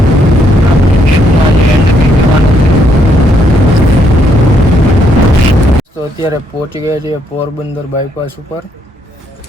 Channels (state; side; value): normal; both; correlation 0.73